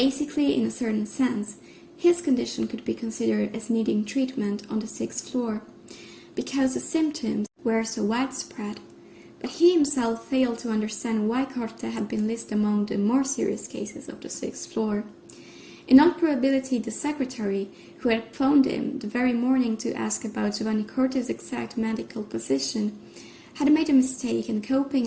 in a certain sense, his condition could be considered as needing treatment on the 6th floor, because the symptoms were so widespread, but he himself failed to understand why Corte had been listed among the more serious cases of the 6th floor. In all probability, the secretary, who had phoned him the very morning to ask about Giovanni Corte's exact medical position, had made a mistake in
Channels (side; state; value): both; identical; correlation 1.00